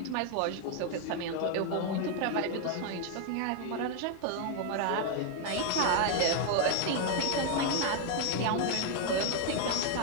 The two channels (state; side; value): different; both; correlation 0.01